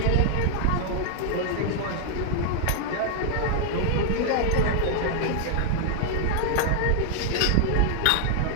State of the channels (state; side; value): different; both; correlation -0.01